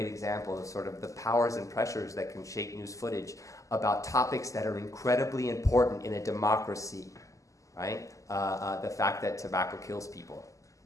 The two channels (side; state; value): right; late; 0.16 ms